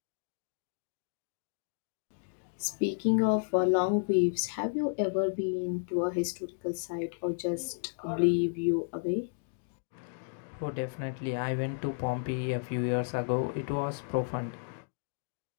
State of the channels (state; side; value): silent; right; digital silence